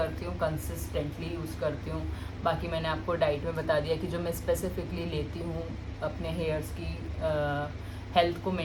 हूँ, कंसिस्टेंटली यूज़ करती हूँ। बाकी मैंने आपको डाइट में बता दिया कि जो मैं स्पेसिफिकली लेती हूँ अपने हेयर्स की हेल्थ को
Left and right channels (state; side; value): identical; both; correlation 1.00